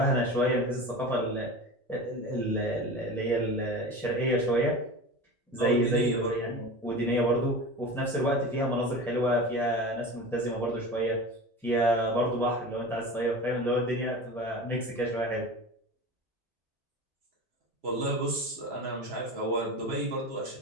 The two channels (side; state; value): both; normal; correlation 0.31